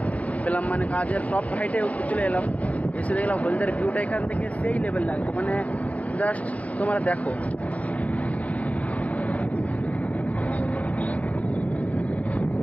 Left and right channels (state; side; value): late; right; 0.068 ms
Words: পেলাম, কাজের টপ হাইটে চলে এলাম। এসে দেখলাম হলদিয়ার ভিউটা এখান থেকে সেই লেভেল লাগছে, জাস্ট তোমরা দেখো।